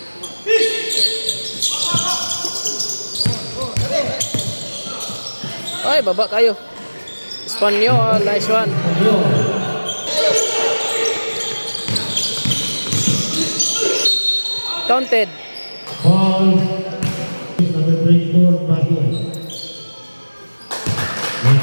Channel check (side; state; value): both; inverted; correlation -1.00